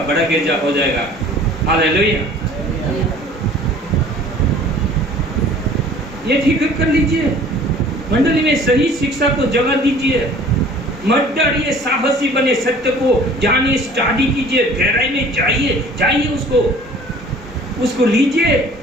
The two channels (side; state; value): both; normal; correlation 0.49